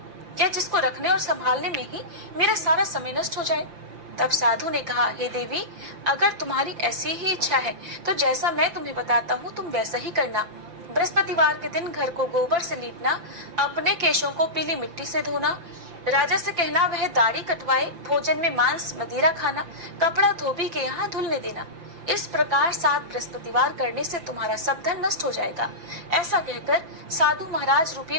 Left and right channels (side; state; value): left; late; 5.9 ms